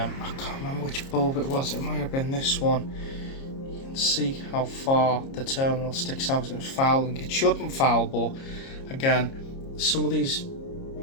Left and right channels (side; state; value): right; late; 30 ms